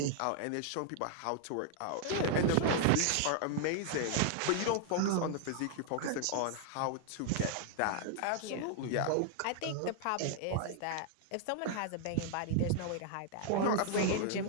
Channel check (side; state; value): both; different; correlation 0.00